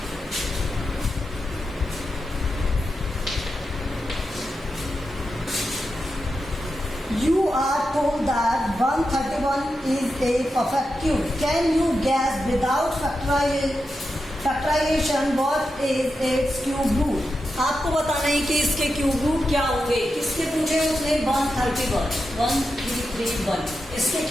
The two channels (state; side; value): normal; both; correlation 0.88